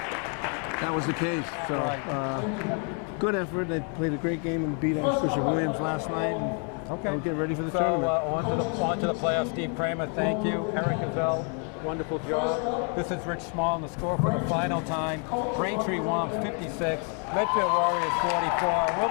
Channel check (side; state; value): right; quieter; 39.8 dB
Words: was the case. So, good effort. They played a great game and beat Archbishop Williams last night. And we'll get ready for the tournament. On to the playoffs. Steve Kramer, thank you. Eric Gazelle, wonderful job. This is Rich Small on the score for the final time. Braintree Womps 56, Medfield Warriors 44. We'll